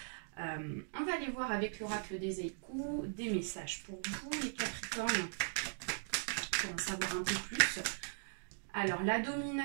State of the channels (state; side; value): silent; left; digital silence